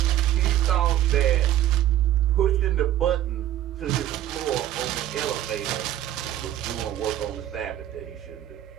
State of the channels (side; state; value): left; quieter; 12.5 dB